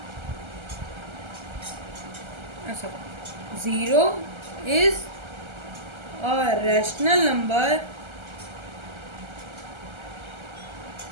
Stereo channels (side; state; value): left; late; 1.3 ms